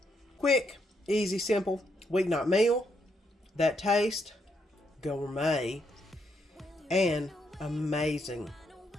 Quick, easy, simple weeknight meal. That taste, gourmet, and amazing.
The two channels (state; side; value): normal; both; correlation 0.77